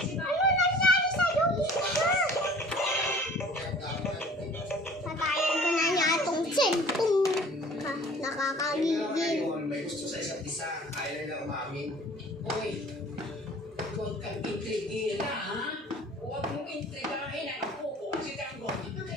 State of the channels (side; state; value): both; normal; correlation 0.48